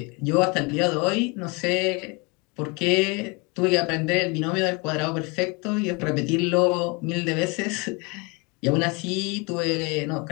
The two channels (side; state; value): right; quieter; 29.1 dB